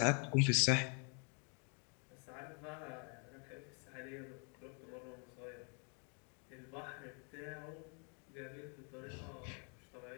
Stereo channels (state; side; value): quieter; right; 38.6 dB